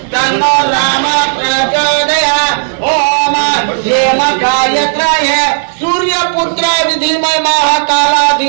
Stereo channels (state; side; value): silent; left; digital silence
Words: तन्नो राम प्रचोदयात् ओम हेम गायत्राय सूर्यपुत्र विधिमय महाकाला